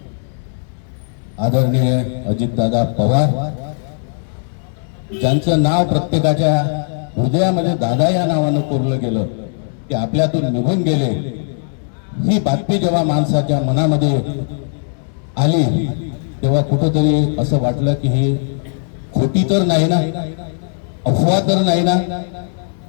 आदरणीय अजितदादा पवार, ज्यांचं नाव प्रत्येकाच्या हृदयामध्ये दादा या नावानं कोरलं गेलं, ते आपल्यातून निघून गेले. ही बातमी जेव्हा माणसाच्या मनामध्ये आली तेव्हा कुठंतरी असं वाटलं की ही खोटी तर नाही ना, अफवा तर नाही ना.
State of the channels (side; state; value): right; silent; 65 dB below the other